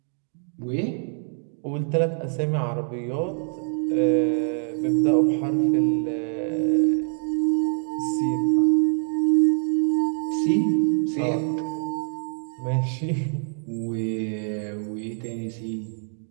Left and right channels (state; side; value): silent; left; 62 dB below the other